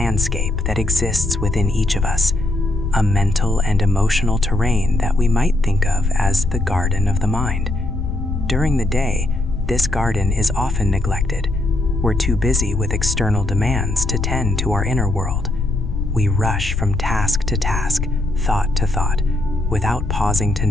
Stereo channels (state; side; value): noise; left; rumble, 2 dB below the sound